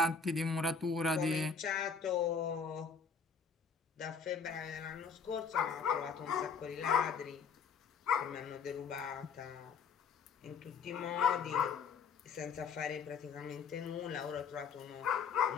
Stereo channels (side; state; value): right; quieter; 5.7 dB